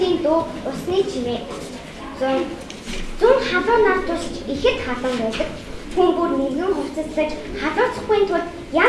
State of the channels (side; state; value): both; identical; correlation 1.00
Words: дуу, усны чимээ. Зун халуун нар тусч ихэд халуун байдаг. Хүн бүр нэгэн хувцаслаж халууцахгүй тул